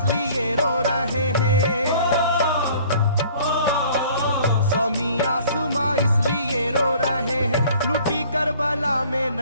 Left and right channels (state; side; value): inverted; both; correlation -0.52